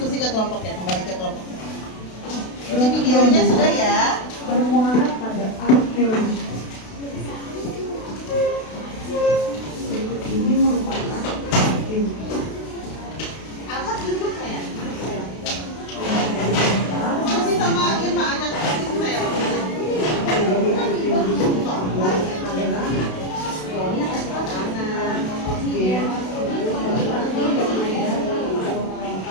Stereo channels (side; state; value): right; late; 32 ms